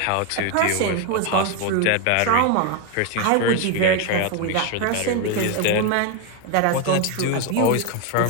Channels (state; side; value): different; both; correlation 0.01